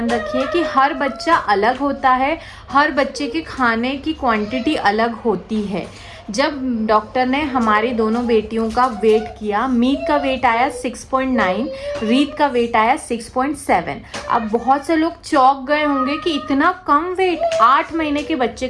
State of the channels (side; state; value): both; identical; correlation 1.00